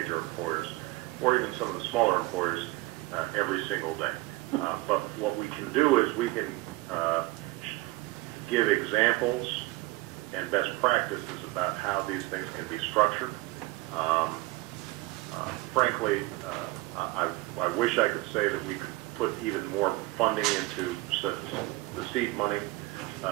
employers or even some of the smaller employers every single day. But what we can do is we can give examples and best practices about how these things can be structured. Frankly, I wish I could say that we could put even more funding into the seed money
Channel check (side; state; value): left; quieter; 20.7 dB